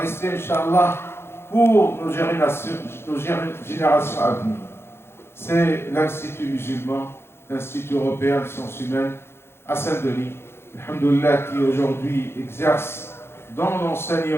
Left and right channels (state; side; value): late; right; 0.12 ms